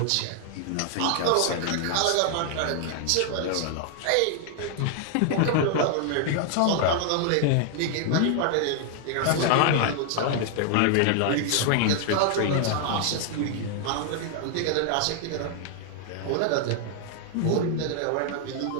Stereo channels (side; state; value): both; different; correlation 0.00